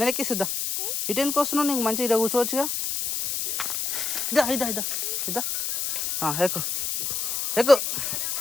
ఎక్కిసిద్దా. ఇటు ఎందుకు వస్తున్నావు? నీకు మంచిగా ఇదా కూర్చోవచ్చుగా. ఇదా ఇదా ఇదా ఇదా ఎక్కు ఎక్కు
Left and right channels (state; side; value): noise; left; hiss, 1 dB below the sound